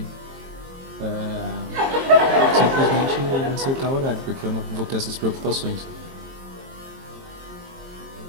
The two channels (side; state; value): left; late; 22 ms